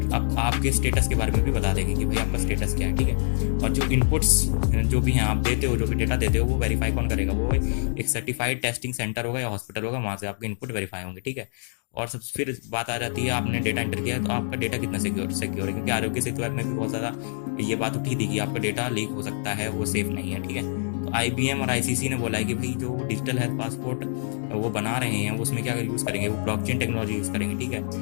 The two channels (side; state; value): right; silent; digital silence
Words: अब आपके स्टेटस के बारे में भी बता देगी कि भाई आपका स्टेटस क्या है, ठीक है। और जो इनपुट्स जो भी हैं आप देते हो, जो भी डेटा देते हो, वो वेरीफाई कौन करेगा, वो एक सर्टिफाइड टेस्टिंग सेंटर होगा या हॉस्पिटल होगा, वहाँ से आपके इनपुट वेरीफाई होंगे, ठीक है। और सब फिर बात आ जाती है, आपने डेटा एंटर किया है तो आपका डेटा कितना सिक्योर है, क्योंकि आरोग्य सेतु ऐप में भी बहुत ज़्यादा ये बात उठी थी कि आपका डेटा लीक हो सकता है, वो सेफ नहीं है, ठीक है। तो IBM और ICC ने बोला है कि भाई जो डिजिटल हेल्थ पासपोर्ट वो बना रहे हैं उसमें क्या यूज़ करेंगे, वो ब्लॉकचेन टेक्नोलॉजी यूज़ करेंगे, ठीक है,